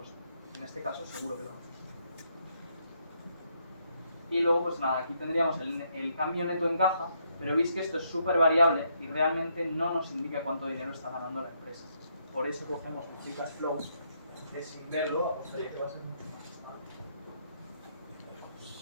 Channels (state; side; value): inverted; both; correlation -0.75